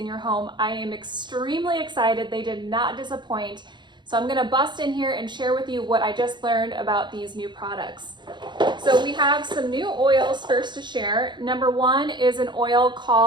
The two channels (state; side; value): late; left; 0.22 ms